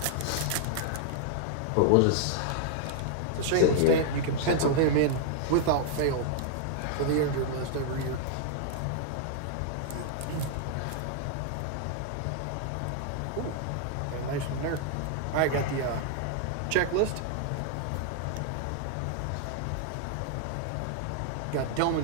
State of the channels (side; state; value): both; different; correlation -0.01